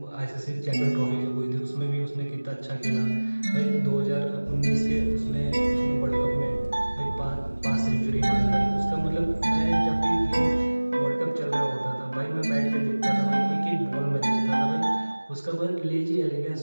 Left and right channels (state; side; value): inverted; both; correlation -1.00